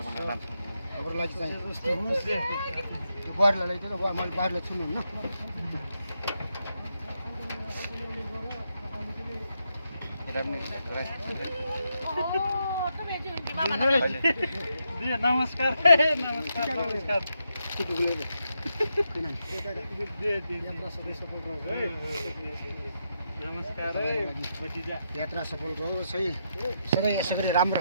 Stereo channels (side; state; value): both; inverted; correlation -0.82